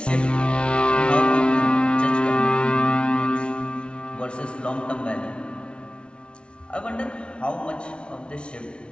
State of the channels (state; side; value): late; right; 0.058 ms